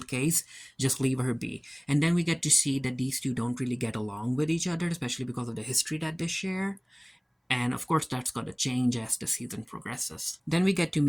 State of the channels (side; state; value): both; identical; correlation 1.00